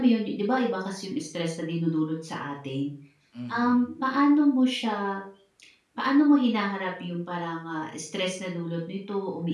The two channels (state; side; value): identical; both; correlation 1.00